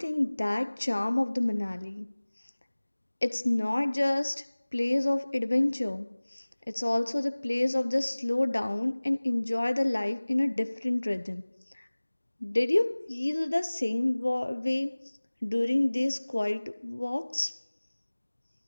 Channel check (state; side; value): inverted; both; correlation -1.00